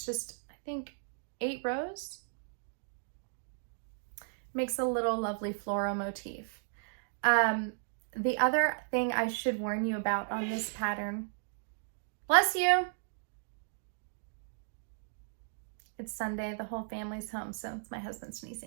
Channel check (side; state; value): left; silent; digital silence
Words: just, I think, 8 rows. Makes a little lovely floral motif. The other thing I should warn you about on this pattern Bless you. It's Sunday, the whole family's home, so it's my husband